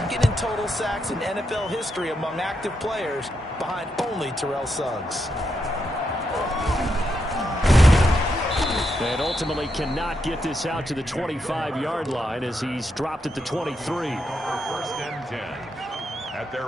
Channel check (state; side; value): normal; both; correlation 0.82